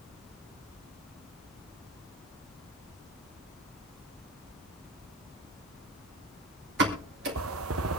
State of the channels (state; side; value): normal; both; correlation 0.33